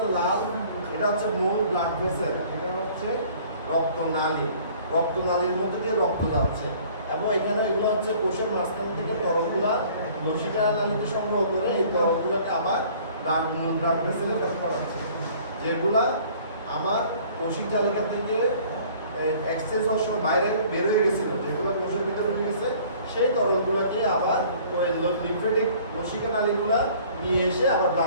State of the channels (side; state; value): both; inverted; correlation -0.53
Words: লাল, এটা হচ্ছে মূল ব্লাড ভেসেল, এটা হচ্ছে রক্তনালী। রক্তনালীর মধ্যে দিয়ে রক্ত যাচ্ছে এবং এখানে এগুলো হচ্ছে কোষের মাঝখান থেকে তরলগুলা লসিকা নালীতে সংগ্রহ করে এই তরলগুলোকে আবার মূল ব্লাড ভেসেলে ব্যবহার করা হচ্ছে, যেগুলা আমার কোষিক তালিকা থেকে এক্সচেঞ্জ হওয়ার সময় বাইরে বের হয়ে গেছিল, যেগুলো কোষের ভিতরে ঢুকে গেছে সেই তরলগুলোকে আবার ওই লিম্ফেটিক লসিকা নালীগুলা নিয়ে এসে আবার